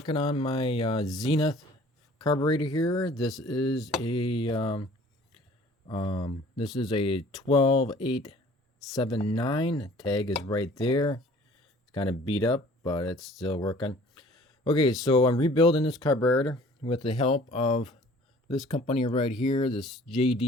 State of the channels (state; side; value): normal; both; correlation 0.51